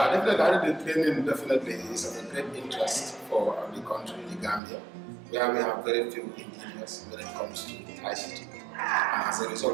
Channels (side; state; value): left; drops out; at 4.6 s